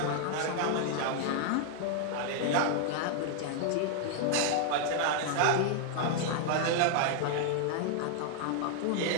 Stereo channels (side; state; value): both; different; correlation 0.00